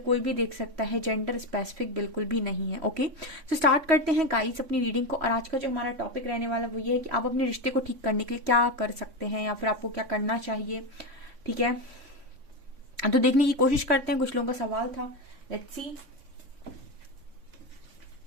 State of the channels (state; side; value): late; left; 3.6 ms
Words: भी देख सकता है, जेंडर स्पेसिफिक बिल्कुल भी नहीं है। ओके, तो स्टार्ट करते हैं गाइज अपनी रीडिंग को। और आज का जो हमारा टॉपिक रहने वाला वो ये है कि आप अपने रिश्ते को ठीक करने के लिए क्या कर सकते हैं या फिर आपको क्या करना चाहिए। ठीक है, तो देखने की कोशिश करते हैं। कुछ लोगों का सवाल था, लेट्स सी।